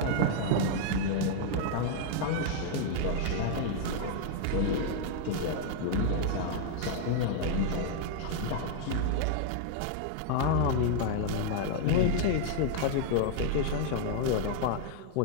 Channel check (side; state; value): both; different; correlation 0.00